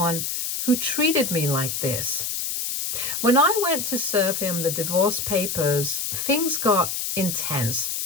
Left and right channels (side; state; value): left; noise; hiss, 2 dB below the sound